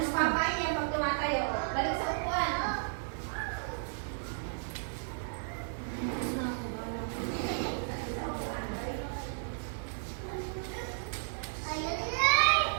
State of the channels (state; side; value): silent; left; 55 dB below the other